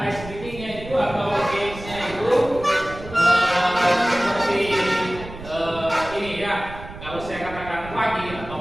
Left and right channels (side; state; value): right; noise; rumble, 14 dB below the sound